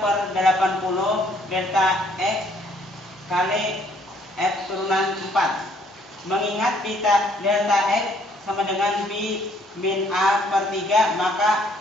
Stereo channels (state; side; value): normal; both; correlation 0.64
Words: delta X kali F turunan 4. Mengingat delta X sama dengan B min A/3,